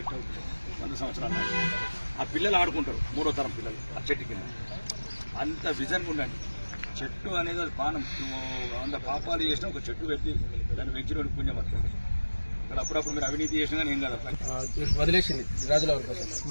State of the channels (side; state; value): both; inverted; correlation -1.00